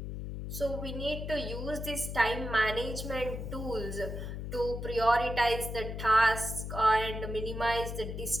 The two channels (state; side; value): noise; left; hum, 6 dB below the sound